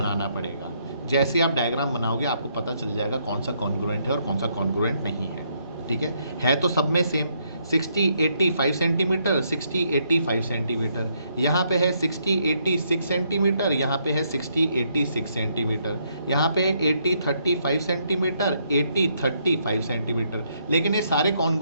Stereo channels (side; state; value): both; inverted; correlation -0.73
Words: पड़ेगा। जैसे आप डायग्राम बनाओगे आपको पता चल जाएगा कौन सा कॉन्ग्रुएंट है और कौन सा कॉन्ग्रुएंट नहीं है। ठीक है तो सब में सेम 60 80 5 सेंटीमीटर, 60 80 5 सेंटीमीटर, यहाँ पे है 60 80 6 सेंटीमीटर, यहाँ पे है 60 80 6 सेंटीमीटर, यहाँ पे है 80 30 5 सेंटीमीटर, 80 30 5 सेंटीमीटर। लेकिन ये सारे